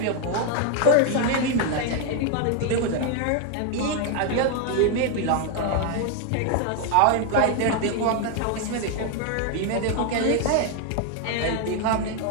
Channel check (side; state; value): both; different; correlation 0.01